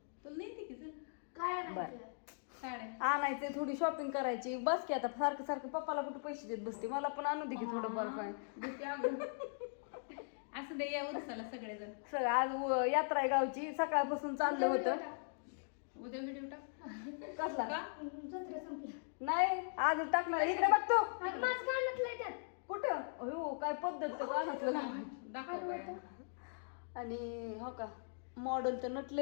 तुला नाही की काय साड्या आणायचे, थोडी शॉपिंग करायची बस की. आता सारखं पप्पाला कुठे पैसे देत बसते. मला पण आणू दे की थोडंफार काय. असं दे या उरसाला सगळेजण. सगळं आज यात्रा आहे गावची. सकाळपासून चाललं होतं. उद्या व्हिडिओ टाक. कसला का? नाही आज टाकणार. इकडे बघतो त्यात कुठं. हो काय पद्धत तर कानातलं लावायची. दाखव काय. आणि हो का मॉडेल तर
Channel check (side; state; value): right; silent; digital silence